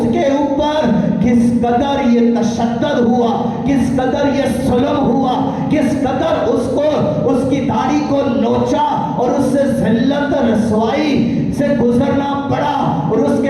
ऊपर किस कदर ये तशद्दुद हुआ, किस कदर ये जुल्म हुआ, किस कदर उसको उसकी दाढ़ी को नोचा और उससे जिल्लत रसवाई से गुजरना पड़ा और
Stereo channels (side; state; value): both; identical; correlation 1.00